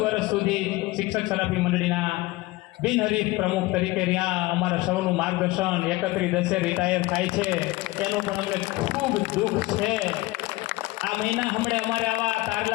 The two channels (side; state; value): right; quieter; 20.3 dB